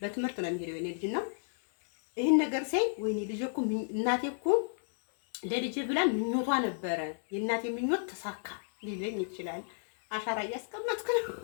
ነው የሚሄደው የኔ ልጅ ነው። ይሄን ነገር ሳይ ወይኔ ልጄ እኮ እናቴ እኮ ለልጄ ብላ ምኞቷ ነበረ፣ የእናቴ ምኞት ተሳካ ሊለኝ ይችላል። አሻራ እያስቀመጥኩ ነው።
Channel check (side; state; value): right; silent; digital silence